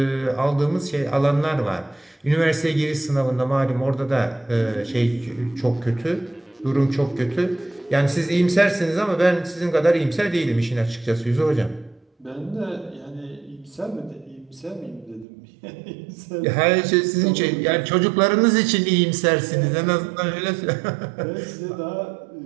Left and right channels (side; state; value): left; drops out; at 15.2 s